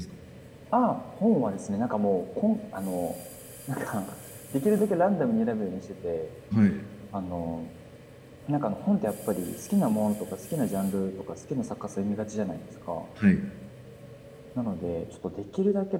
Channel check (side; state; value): both; identical; correlation 1.00